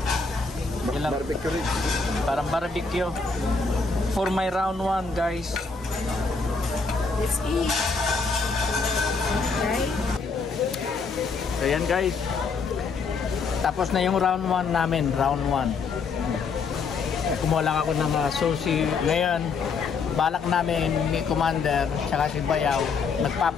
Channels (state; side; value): quieter; right; 4.7 dB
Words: Ilang? Barbecue rin. Parang barbecue. For my round 1, guys. Let's eat. Okay. So yan, guys. Tapos na yung round 1 namin. Round 1. Kumuha lang ako ng sushi. Ngayon, balak namin ni Commander tsaka si Bayaw